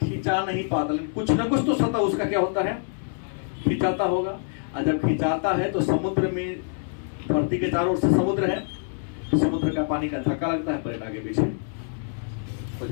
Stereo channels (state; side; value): silent; right; 61 dB below the other